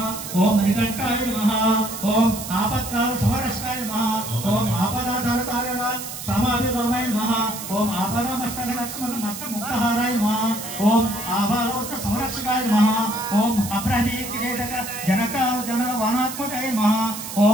ఓం మణికంఠాయ నమః ఓం ఆపత్కాల సమరక్షకాయ నమః ఓం ఆపదాధారకారణ సమాభిరామాయ నమః ఓం ఆపదామస్తక లక్ష్మణ మత్త ముక్తహారాయ నమః ఓం ఆభాలోక సంరక్షకాయ నమః ఓం అబ్రహ్మీ కిరీటక జనకాల జన వానాత్మకాయ నమః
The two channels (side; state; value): right; noise; hiss, 9 dB below the sound